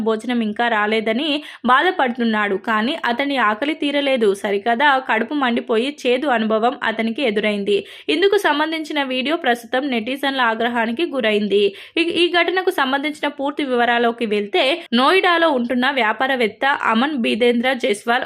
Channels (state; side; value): identical; both; correlation 1.00